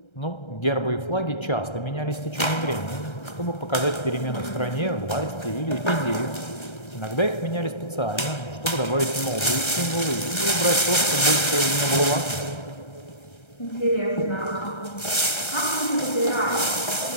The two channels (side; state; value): right; late; 1.3 ms